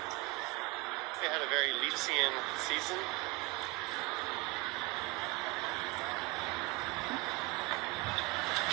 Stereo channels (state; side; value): quieter; left; 24.1 dB